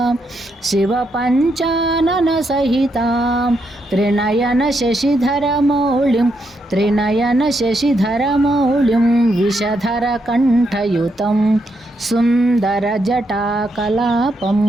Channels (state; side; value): normal; both; correlation 0.79